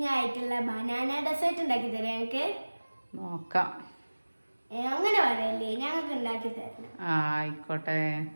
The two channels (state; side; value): inverted; both; correlation -1.00